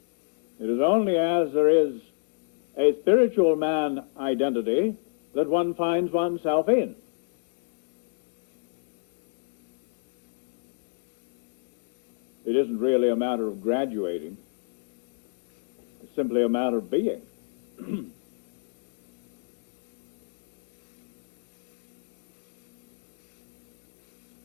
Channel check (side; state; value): right; silent; digital silence